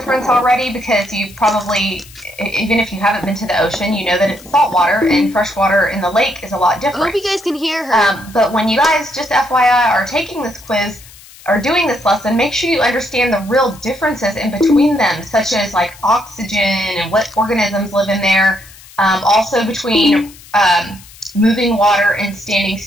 already because you've probably, even if you haven't been to the ocean, you know that it's saltwater and freshwater in the lake is a lot different. I hope you guys can hear her. But when you guys, just FYI, are taking this quiz or doing this lesson, make sure you understand the real differences in between them, such as like oxygen and what organisms live in there. Also between moving water and standing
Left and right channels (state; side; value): noise; left; hiss, 21 dB below the sound